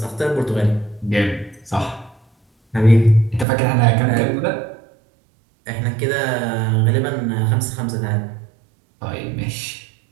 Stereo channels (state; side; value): drops out; left; at 3.5 s